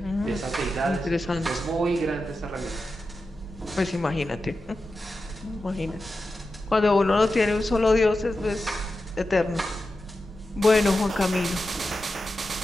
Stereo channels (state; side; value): normal; both; correlation 0.91